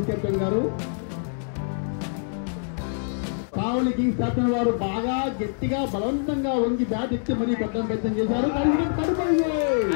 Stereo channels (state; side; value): silent; right; 62 dB below the other